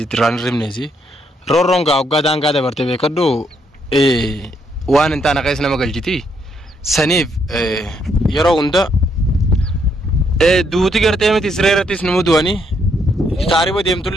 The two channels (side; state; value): both; normal; correlation 0.74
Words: tiraan rimneesi roorroon gaa waggaa daangaa dabarte beekadhu waan hin taane keessa nama galchiti saniif yeroo hunda duuti gartee miti siree irrattis nu mudu'anii taariba